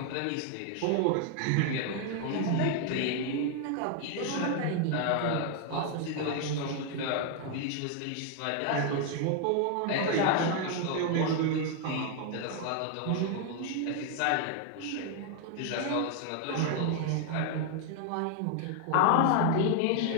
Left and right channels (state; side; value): different; both; correlation 0.00